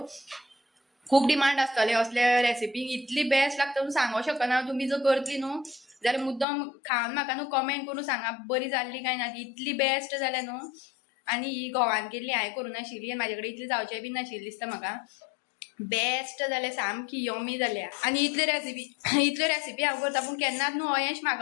खूब डिमांड आसतले असले रेसिपी. इतली बेस्ट लागता म्हणून सांगूंक शकना. तुमी जर करतली न्हू जाल्यार मुद्दम खावन म्हाका न्हू कमेंट करून सांगा बरी जाल्ली काय ना ती. इतली बेस्ट जाल्या न्हू. आनी ही घोवान केल्ली हांवें करूं नाशिल्ली आनी म्हाजे कडेन इतली जावचें बीन नाशिल्ली दिसता म्हाका. बेस्ट जाल्या सामकी यमी जाल्या. आनी इतले रेसिपी हांव करता पूण केन्नाच न्हू अयेश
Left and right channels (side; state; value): right; drops out; at 6.5 s